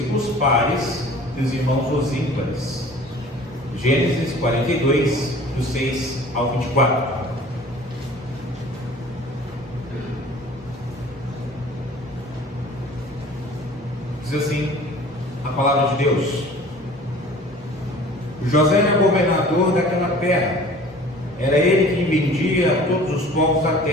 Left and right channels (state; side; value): normal; both; correlation 0.46